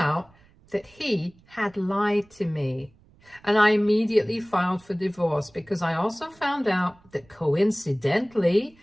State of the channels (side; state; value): right; noise; rumble, 29 dB below the sound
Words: that he had lied to me, and I immediately filed for divorce because I also found out that coincidentally,